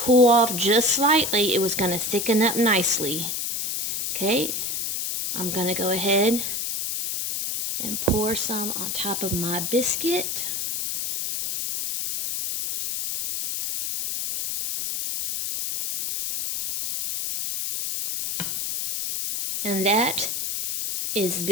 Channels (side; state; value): left; noise; hiss, 2 dB below the sound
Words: off just slightly, it was going to thicken up nicely. Okay, I'm going to go ahead and pour some on top of my biscuit. And that is